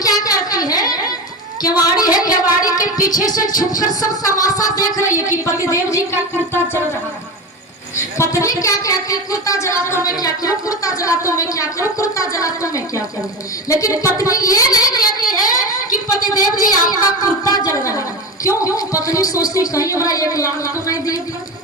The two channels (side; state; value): both; normal; correlation 0.23